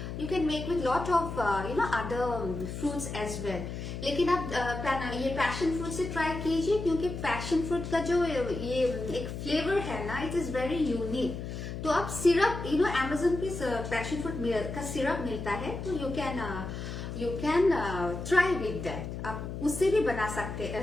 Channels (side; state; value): left; noise; hum, 7 dB below the sound